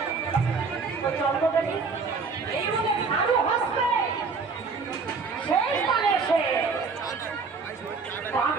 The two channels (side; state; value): left; quieter; 4.7 dB